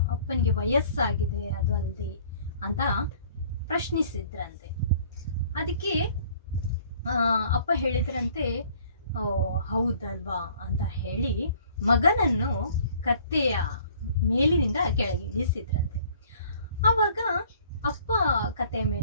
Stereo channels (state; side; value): inverted; both; correlation -0.55